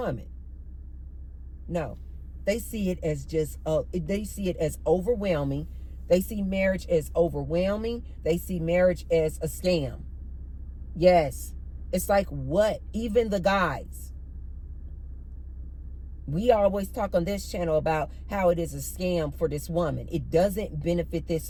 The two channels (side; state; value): both; identical; correlation 1.00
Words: No, they see it as they see it as overwhelming. They see marriage as overwhelming. They see marriage as a scam. Yes, it's like what? Even the guys. We always talk on this channel about how it is a scam for this woman. It doesn't benefit